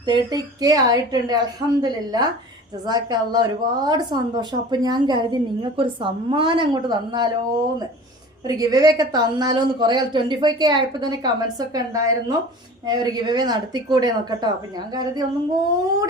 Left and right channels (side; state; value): both; normal; correlation 0.40